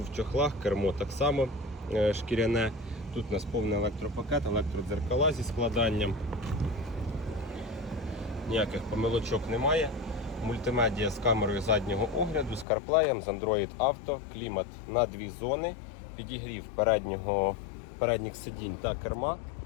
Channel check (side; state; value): right; drops out; at 12.7 s